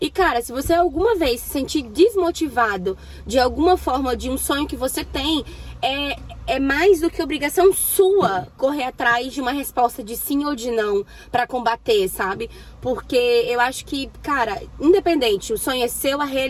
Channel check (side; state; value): both; identical; correlation 1.00